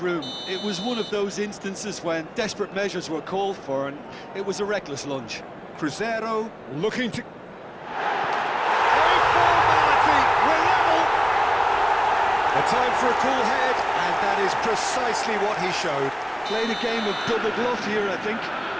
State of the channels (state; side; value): identical; both; correlation 1.00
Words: room. It was one of those instances when desperate measures were called for, and it was a reckless lunge. Cruzeiro looking to... A formality, we're level! A time for a cool head, and that is precisely what he showed. Played a game of double bluff here, I think.